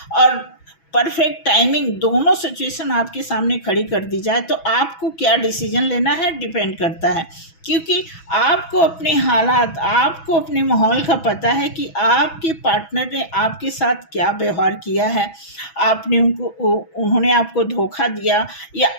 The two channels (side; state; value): right; late; 6.1 ms